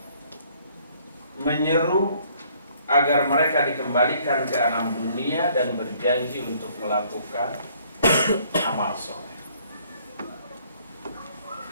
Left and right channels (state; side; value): inverted; both; correlation -0.62